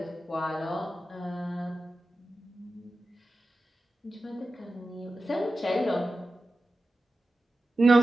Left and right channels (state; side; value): normal; both; correlation 0.93